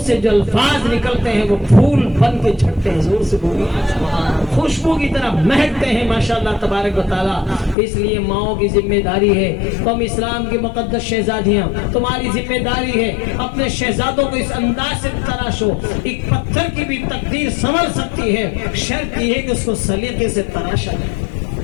سے جو الفاظ نکلتے ہیں وہ پھول بن کے جھڑتے ہیں۔ زور سے بولو۔ خوشبو کی طرح مہکتے ہیں ماشاءاللہ تبارک و تعالیٰ۔ اس لیے ماؤں کی ذمہ داری ہے، تم اسلام کی مقدس شہزادیاں، تمہاری ذمہ داری ہے اپنے شہزادوں کو اس انداز سے تراشو۔ ایک پتھر کی بھی تقدیر سنور سکتی ہے، شرط یہ ہے کہ اس کو سلیقے سے تراشا جائے۔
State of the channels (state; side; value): drops out; right; at 7.8 s